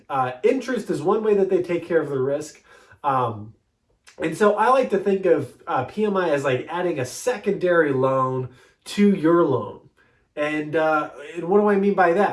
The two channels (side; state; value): both; identical; correlation 1.00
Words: Interest is one way that they take care of the risk. And so I like to think of PMI as like adding a secondary loan to your loan. And what do I mean by